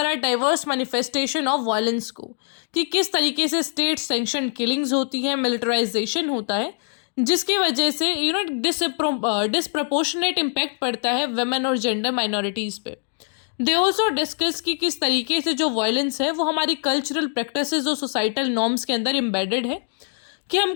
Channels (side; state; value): right; silent; 55 dB below the other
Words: डाइवर्स मैनिफेस्टेशन ऑफ वायलेंस को, कि किस तरीके से स्टेट सैंक्शन किलिंग्स होती हैं, मिलिटराइजेशन होता है, जिसकी वजह से डिसप्रपोर्शनेट इम्पैक्ट पड़ता है वेमेन और जेंडर माइनॉरिटीज़ पे। दे ऑल्सो डिस्कस कि किस तरीके से जो वायलेंस है वो हमारी कल्चरल प्रैक्टिसेस और सोसाइटल नॉर्म्स के अंदर एम्बेडेड है, कि हम